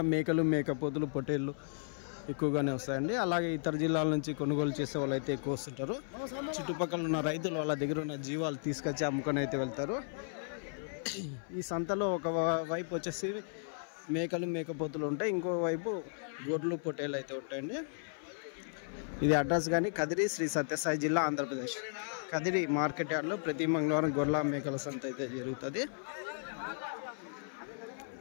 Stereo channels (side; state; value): right; silent; 55 dB below the other